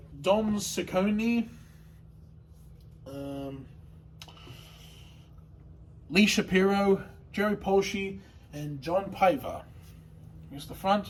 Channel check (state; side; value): identical; both; correlation 1.00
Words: Ciccone, Lee Shapiro, Jerry Polsky, and John Piver. Here's the